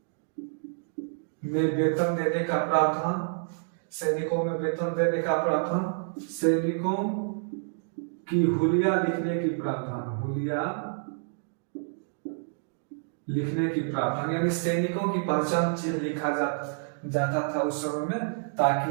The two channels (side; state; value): left; silent; digital silence